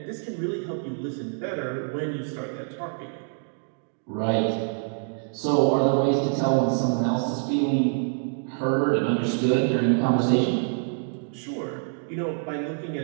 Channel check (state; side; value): silent; left; 61 dB below the other